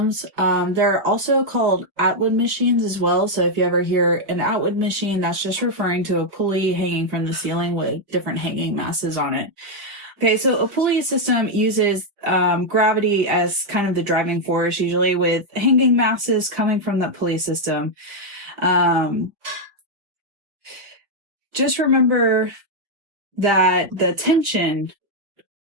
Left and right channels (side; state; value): left; late; 4.7 ms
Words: They're also called Atwood machines as well. So if you ever hear an Atwood machine, that's just referring to a pulley hanging from the ceiling with different hanging masses on it. Okay, so a pulley system uses gravity as kind of the driving force, usually with hanging masses coming from that pulley system. Just remember that the tension